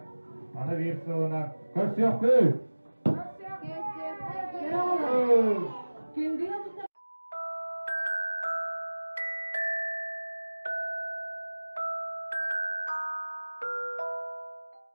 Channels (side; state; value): both; inverted; correlation -1.00